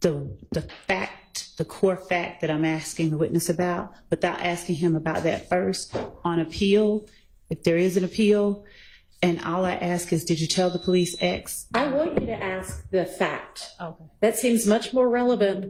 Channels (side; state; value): both; identical; correlation 1.00